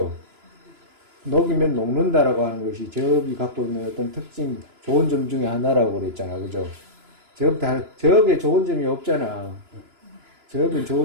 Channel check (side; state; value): left; late; 2.9 ms